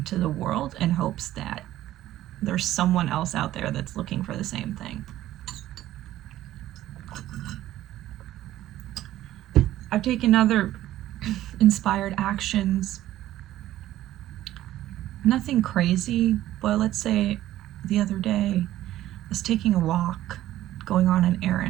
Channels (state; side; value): quieter; left; 14.0 dB